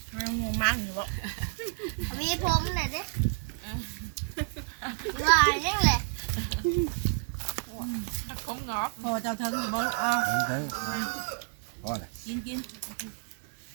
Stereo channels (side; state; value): left; silent; 58 dB below the other